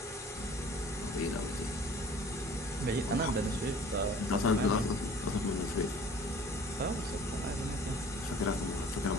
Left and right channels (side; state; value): both; normal; correlation 0.49